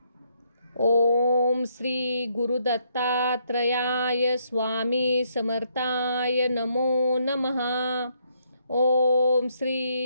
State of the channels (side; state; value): both; inverted; correlation -0.73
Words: ओम श्री गुरुदत्तात्रयाय स्वामी समर्थाय नमो नमः. ओम